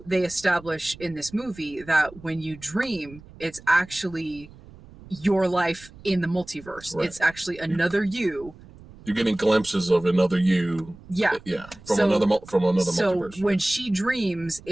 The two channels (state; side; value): noise; right; rumble, 21 dB below the sound